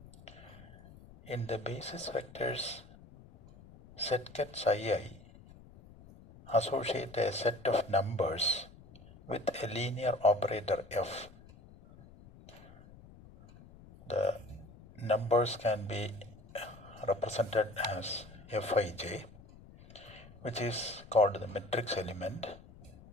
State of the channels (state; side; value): noise; left; rumble, 20 dB below the sound